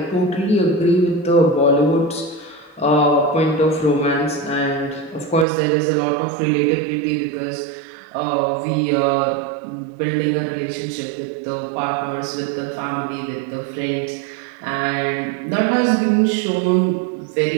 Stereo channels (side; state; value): left; drops out; at 5.5 s